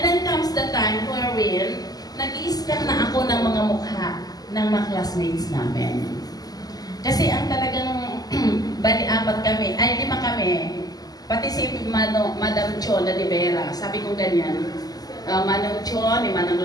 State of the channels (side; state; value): right; late; 0.18 ms